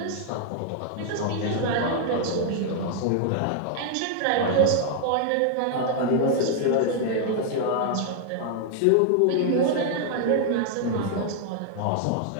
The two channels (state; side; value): different; both; correlation 0.00